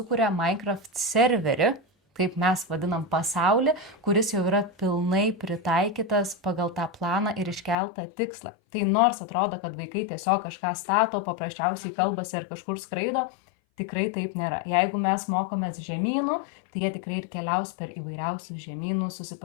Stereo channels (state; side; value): drops out; right; at 7.8 s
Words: Minecraft serverį, kaip mes vadinam pasaulį, kuris jau yra pilnai pritaikytas pagal tą planą ir iškeltą tikslą. Tai nors atrodo, kad vaikai tiesiog kažką stato, paprasčiausiai kalbasi ar kažkur skraido, tikrai taip nėra. Jeigu mes mokomės žemynų, tai jie tikrai ir keliaus per įvairiausius žemynus,